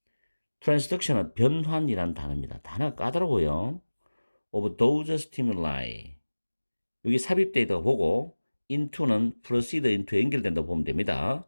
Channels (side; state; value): both; inverted; correlation -1.00